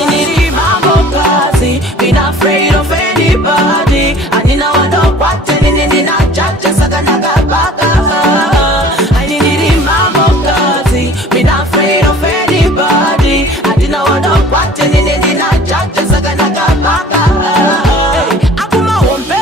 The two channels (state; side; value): normal; both; correlation 0.48